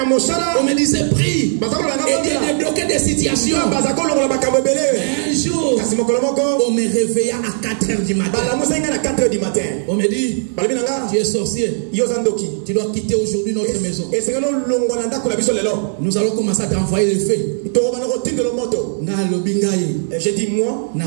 On me disait prie. Et Dieu débloquait des situations. Un jour, on me réveilla à 4h du matin. On me dit, tu es sorcier. Tu dois quitter aujourd'hui notre maison. Nous allons commencer à t'envoyer le feu. J'ai dit moi, je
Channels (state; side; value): silent; left; digital silence